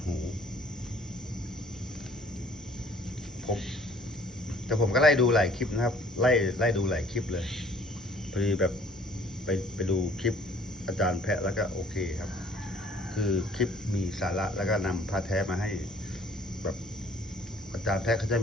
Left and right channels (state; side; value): normal; both; correlation 0.56